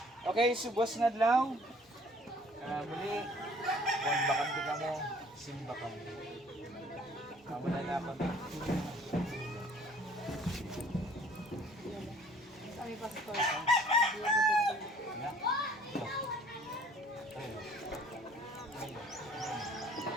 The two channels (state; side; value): normal; both; correlation 0.55